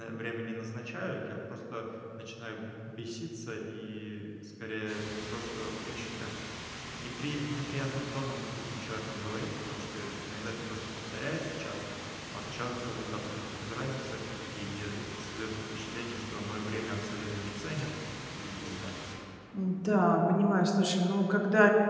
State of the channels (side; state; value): both; identical; correlation 1.00